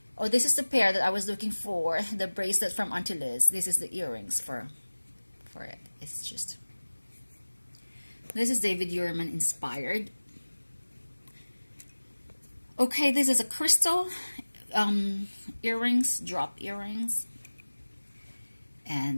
the pair that I was looking for, the bracelet from Auntie Liz. This is the earrings for it. It's just, this is David Yurman inspired. Okay, this is a crystal earrings, drop earrings.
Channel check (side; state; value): both; inverted; correlation -1.00